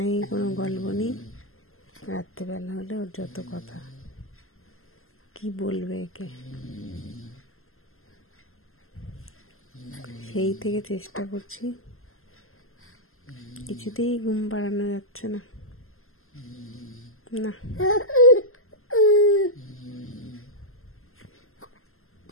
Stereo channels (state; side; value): late; right; 0.62 ms